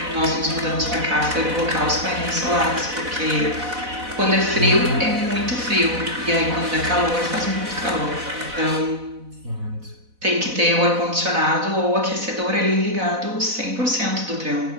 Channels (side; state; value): left; late; 4.0 ms